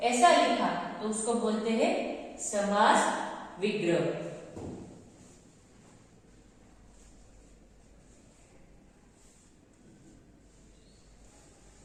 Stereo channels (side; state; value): both; identical; correlation 1.00